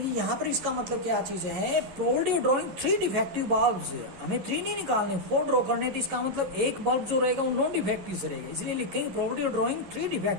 यहाँ पर इसका मतलब क्या चीज है, probability of drawing 3 defective bulbs, हमें 3 नहीं निकालने 4 ड्रॉ करने, तो इसका मतलब एक बल्ब जो रहेगा वो नॉन डिफेक्टिव से रहेगा, इसलिए लिखेंगे probability of drawing 3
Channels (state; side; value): late; left; 11 ms